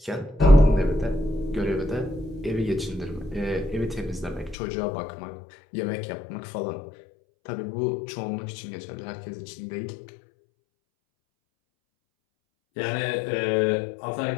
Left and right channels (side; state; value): right; drops out; at 4.5 s